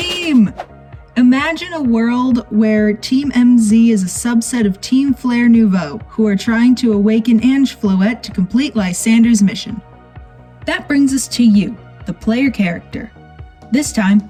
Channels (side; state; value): both; identical; correlation 1.00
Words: Imagine a world where Team MZ is a subset of Team Flare Nouveau, who are trying to awaken Ange Floette to complete Lysander's mission. That brings us to you, the player character. This time,